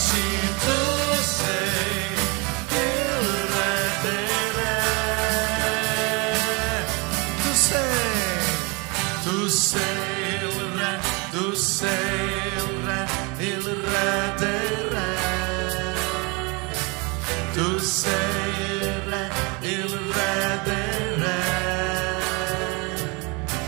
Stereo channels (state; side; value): quieter; left; 29.0 dB